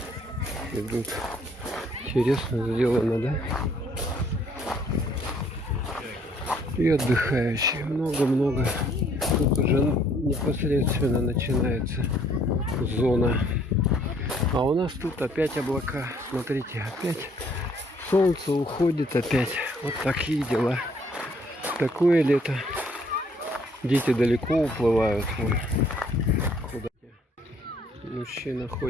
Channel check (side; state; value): both; normal; correlation 0.63